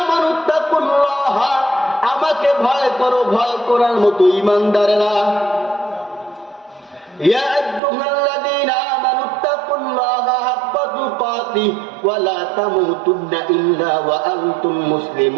আমানুত্তাকুল্লাহ, আমাকে ভয় করো, ভয় করার মতো ঈমানদারেরা। ইয়া আইয়ুহাল্লাযীনা আমানুত্তাকুল্লাহ হাক্কা তুকাতিহি ওয়া লা তামুতুন্না ইল্লা ওয়া আনতুম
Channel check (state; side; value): drops out; left; at 7.8 s